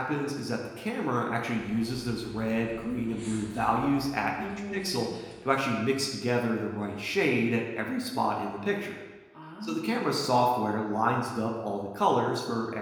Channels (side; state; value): both; identical; correlation 1.00